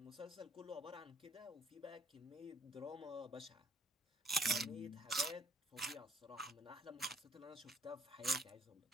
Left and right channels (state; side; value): normal; both; correlation 0.66